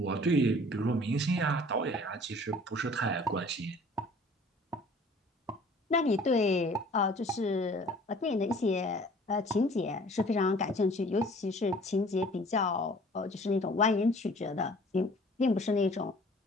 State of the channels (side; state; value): both; normal; correlation 0.51